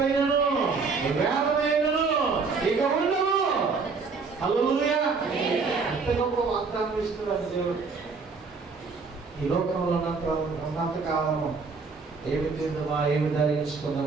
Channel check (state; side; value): quieter; left; 4.7 dB